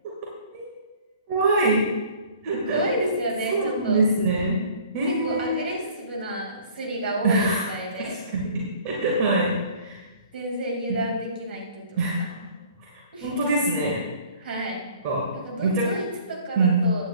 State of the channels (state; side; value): inverted; both; correlation -0.51